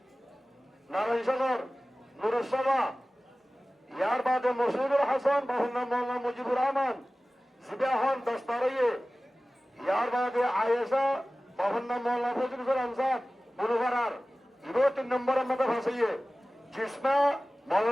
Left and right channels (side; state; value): both; normal; correlation 0.97